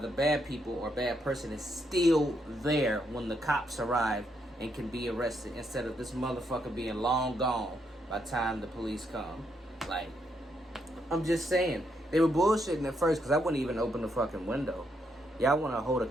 bad people or bad person is still there when the cops arrive and can be arrested, instead of this motherfucker being long gone by the time the police come. Like, I'm just saying, they were bullshitting at first because I wouldn't even open the fucking window. Y'all want to hold a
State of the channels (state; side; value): normal; both; correlation 0.77